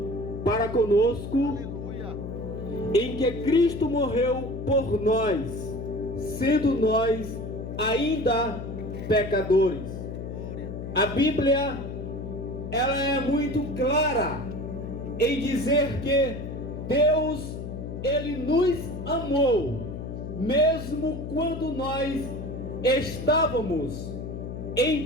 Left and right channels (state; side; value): noise; left; hum, 7 dB below the sound